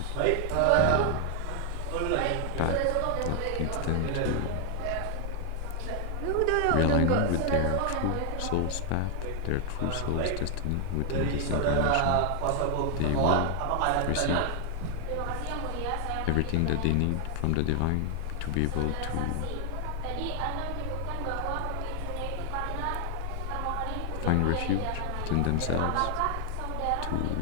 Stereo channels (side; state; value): both; different; correlation 0.00